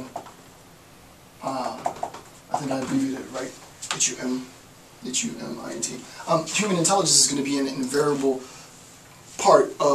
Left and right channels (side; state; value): both; identical; correlation 1.00